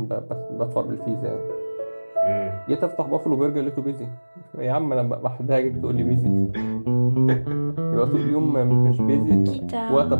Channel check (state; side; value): inverted; both; correlation -1.00